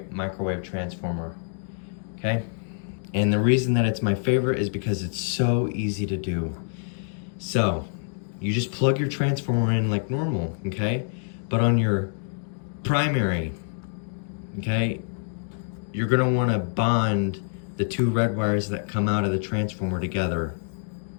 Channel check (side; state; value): right; silent; digital silence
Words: transformer, okay? And the reason that it's my favorite is because it's so easy to do. So you just plug your transformer in like normal, okay? But on your primary, okay, you're gonna wanna bond the two red wires that come out of the transformer together,